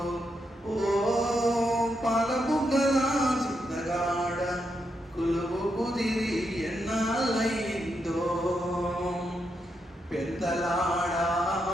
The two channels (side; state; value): both; normal; correlation 0.82